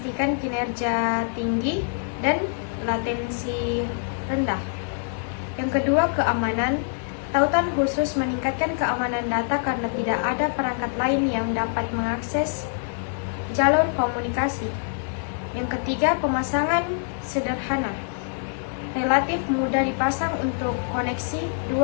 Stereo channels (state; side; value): silent; right; 62 dB below the other